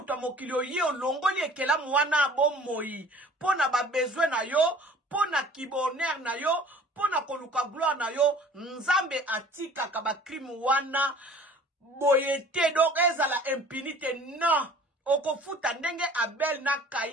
mokili oye olongoli ekelamu wana bomoi. Pona ba besoin na yo, pona kiboner na yo, pona koluka gloire na yo. Nzambe atika kaba crime wana boyete donc ezala impunité non. Okofuta ndenge Abel na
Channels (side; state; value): both; normal; correlation 0.49